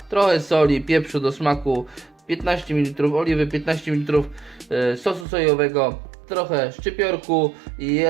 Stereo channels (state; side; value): drops out; left; at 5.2 s